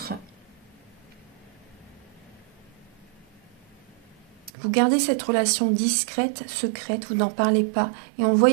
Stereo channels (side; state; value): left; drops out; at 4.5 s